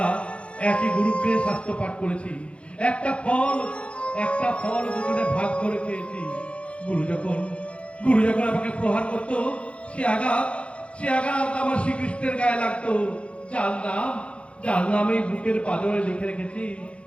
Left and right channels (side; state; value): right; late; 0.060 ms